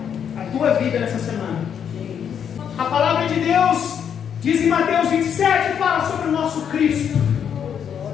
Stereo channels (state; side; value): quieter; right; 8.2 dB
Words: a tua vida nessa semana. A palavra de Deus diz em Mateus 27, fala sobre o nosso Cristo.